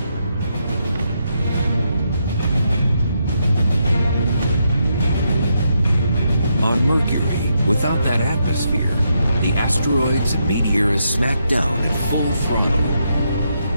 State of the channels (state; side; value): inverted; both; correlation -0.80